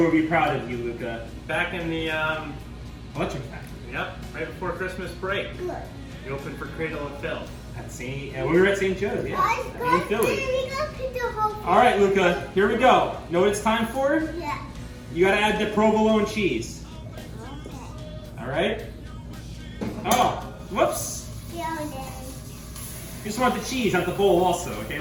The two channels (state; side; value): identical; both; correlation 1.00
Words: will be proud of you, Luca. Back in the, Electric Factory. yep, right before Christmas break, Good. you opened for Cradle of Filth. At St. We were at St. Joe's, yeah. Guys, In guys, Philly. we gotta put the whole thing. All right, Luca, here we go. Know what it's time for? Yeah. You gotta add the provolone cheese. Okay. All right? Oh, whoops. Yeah, Daddy. You just want the cheese, not the bowl also, okay,